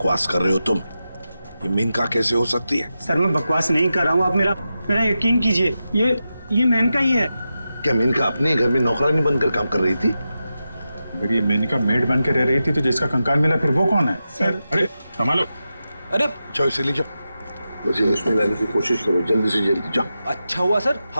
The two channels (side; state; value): both; inverted; correlation -0.91